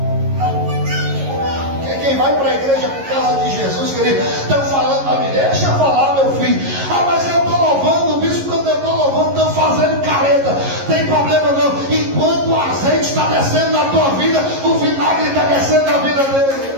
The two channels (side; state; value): left; late; 11 ms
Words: Quem vai para a igreja por causa de Jesus, querido, estão falando para mim, deixa eu falar, meu filho. Ah, mas eu estou louvando, o bispo, quando eu estou louvando, estão fazendo careta. Tem problema não. Enquanto o azeite está descendo na tua vida, o vinagre está descendo na vida dele.